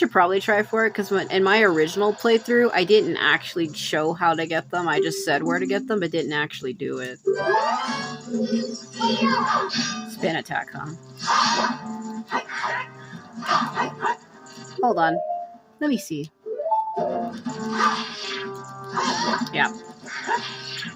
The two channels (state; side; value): identical; both; correlation 1.00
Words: probably try for it because in my original playthrough, I didn't actually show how to get them. I just said where to get them, but didn't actually do it. Spin attack, huh? Hold on. Let me see. Yeah.